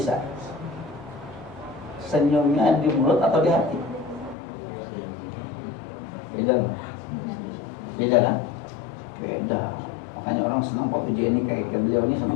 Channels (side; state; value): right; drops out; at 4.4 s